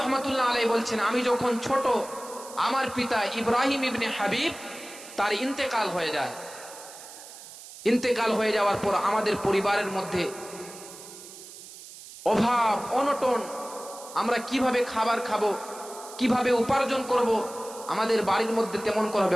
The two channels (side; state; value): right; noise; hiss, 16 dB below the sound